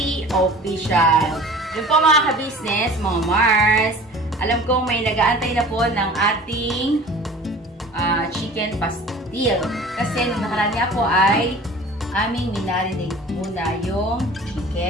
Official. Yun po mga ka-business, mga Mars. Alam kong may nag-aantay na po ng ating chicken pastil. Kasi nung nakaraan nga po ay aming minarinate muna yung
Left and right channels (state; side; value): normal; both; correlation 0.43